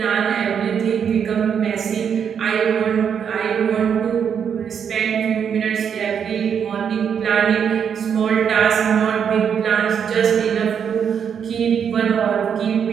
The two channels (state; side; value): quieter; left; 7.6 dB